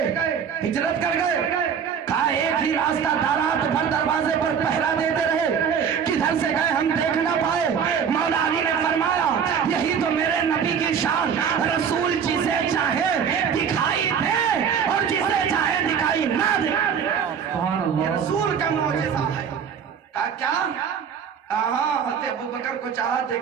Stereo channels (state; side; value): quieter; left; 7.4 dB